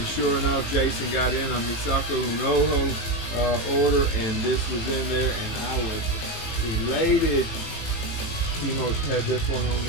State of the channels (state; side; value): late; right; 18 ms